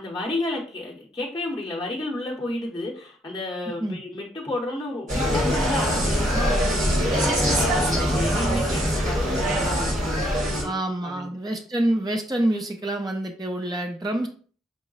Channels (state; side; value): normal; both; correlation 0.72